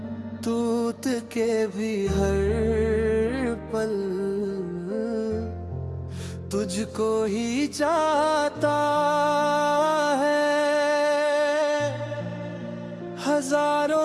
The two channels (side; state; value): both; identical; correlation 1.00